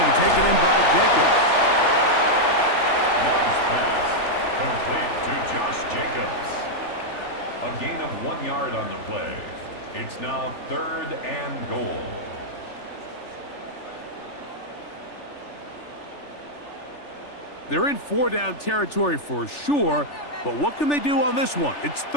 taken in by Jacobs. Love's pass complete to Josh Jacobs. A gain of 1 yard on the play. It's now third and goal. They're in 4-down territory for sure, but what can they do on this one? It's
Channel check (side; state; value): right; late; 3.4 ms